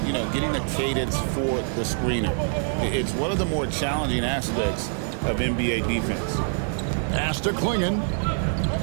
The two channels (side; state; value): left; silent; digital silence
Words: getting a cadence for the screener. It's one of the more challenging aspects of NBA defense. Pass to Klingon.